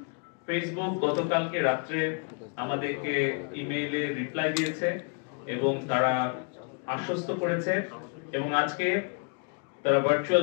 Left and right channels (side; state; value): right; quieter; 37.7 dB